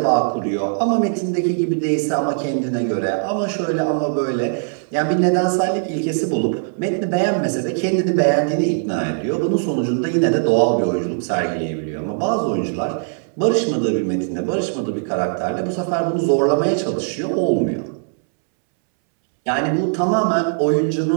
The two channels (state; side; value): silent; left; 66 dB below the other